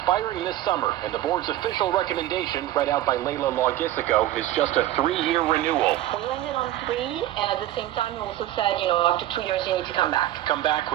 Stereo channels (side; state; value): left; quieter; 14.0 dB